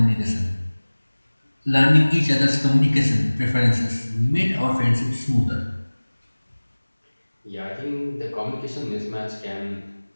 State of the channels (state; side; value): inverted; both; correlation -1.00